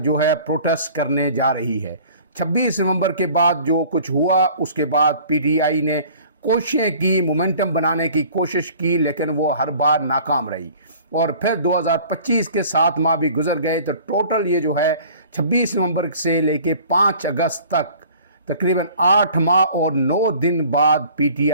है प्रोटेस्ट करने जा रही है। 26 नवंबर के बाद जो कुछ हुआ उसके बाद पीटीआई ने कोशिशें की, मोमेंटम बनाने की कोशिश की, लेकिन वो हर बार नाकाम रही। और फिर 2025 के 7 माह भी गुजर गए तो टोटल ये जो है 26 नवंबर से लेके 5 अगस्त तक तकरीबन 8 माह और 9 दिन बाद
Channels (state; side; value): inverted; both; correlation -0.49